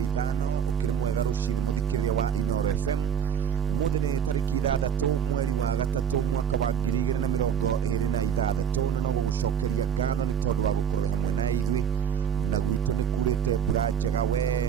ũkĩrĩ mwega rũcinĩ mũthikĩrĩria wa Inooro FM ũmũthĩ nĩ tarĩki 6 mweri wa gatatũ mwaka wa 2026 na no gũgũcokeria ngatho nĩ tondũ wa gũkorwo hamwe na ithuĩ na gwitũ nĩ kurĩte mbura njega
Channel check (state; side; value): quieter; left; 8.1 dB